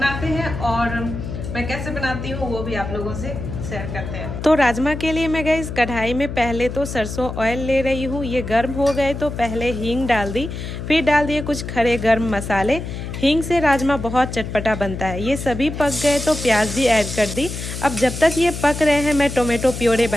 हैं, और मैं कैसे बनाती हूँ वो भी आप लोगों से शेयर करते हैं। तो राजमा के लिए मैं गई कढ़ाई में पहले तो सरसों ऑयल ले रही हूँ। ये गर्म हो गए तो पहले हींग डाल दी, फिर डाल दिए कुछ खड़े गर्म मसाले। हींग से राजमा बहुत चटपटा बनता है। ये सभी पक गए तो प्याज भी ऐड कर दी। अब जब तक ये पक रहे हैं मैं टोमेटो प्योरे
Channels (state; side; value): noise; left; hum, 7 dB below the sound